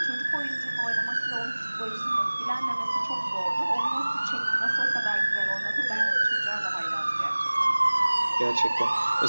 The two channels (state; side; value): inverted; both; correlation -1.00